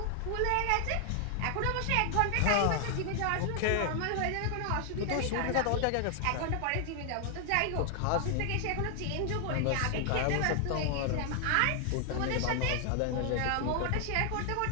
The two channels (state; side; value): different; both; correlation 0.00